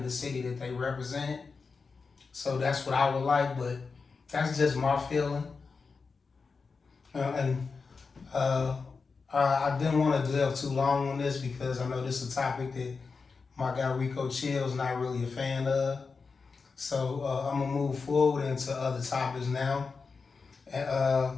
the city that they represent. So that's what I would like, but that's just my feeling. And I didn't want to delve too long on this because I know this is a topic that my guy Rico Chilll is not really a fan of. So I'm gonna move forward into other topics now. And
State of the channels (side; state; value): right; quieter; 4.8 dB